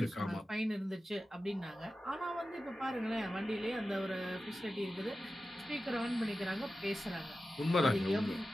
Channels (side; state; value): both; normal; correlation 0.93